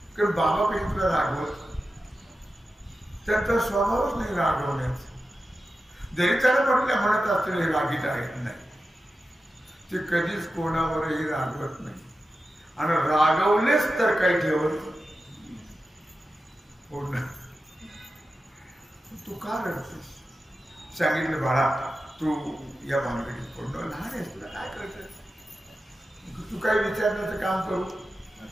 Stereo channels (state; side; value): normal; both; correlation 0.92